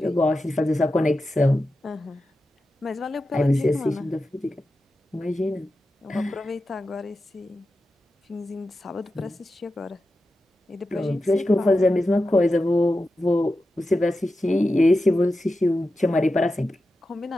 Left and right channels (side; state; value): both; normal; correlation 0.91